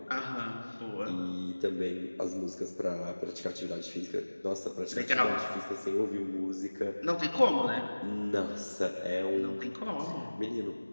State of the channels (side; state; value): both; inverted; correlation -1.00